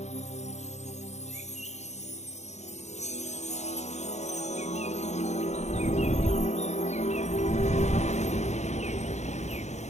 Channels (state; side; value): late; right; 0.33 ms